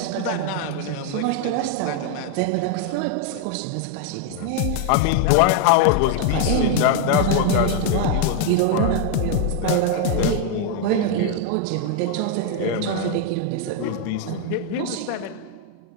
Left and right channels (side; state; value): both; different; correlation 0.01